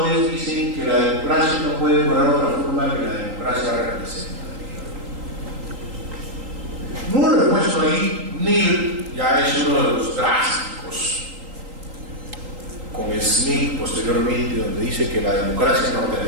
dicen que la democracia no puede cobrar otra forma que la democracia representativa. No lo he puesto ahí. Mill ya es uno de los drásticos, con Smith posteriormente, donde dice que la democracia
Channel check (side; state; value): left; late; 3.8 ms